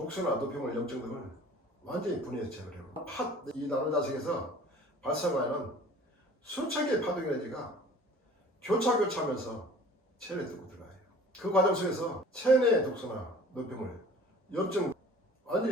노폐물, 염증 등을 완전히 분해해서 제거를 해요. 이 나노자석에서 발생하는 수천 개의 파동에너지가 교차하면서 체내에 뚫고 들어가요. 그 과정 속에서 체내의 독소나 노폐물, 염증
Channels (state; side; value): normal; both; correlation 0.47